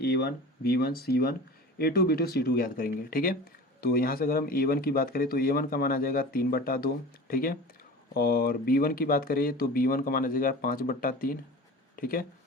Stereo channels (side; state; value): both; normal; correlation 0.36